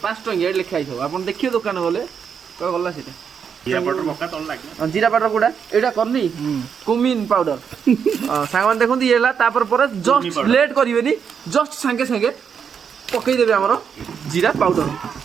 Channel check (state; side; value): quieter; left; 7.0 dB